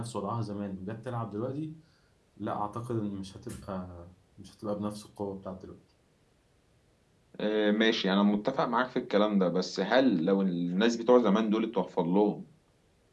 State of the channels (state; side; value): identical; both; correlation 1.00